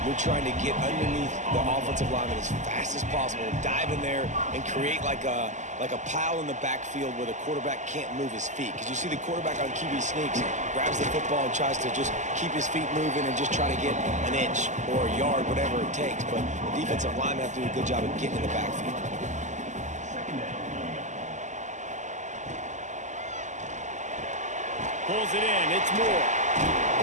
you're trying to get underneath the offensive lineman as fast as possible, dive in there and create like a pile in the backfield where the quarterback can't move his feet. Because you see the quarterback on QB sneaks, grabs the football and tries to just keep his feet moving and just try to get an inch or a yard, whatever it takes. But the defensive linemen have to do a good job of getting in the backfield. Pulls it in. It's Moore.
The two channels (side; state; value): left; late; 0.34 ms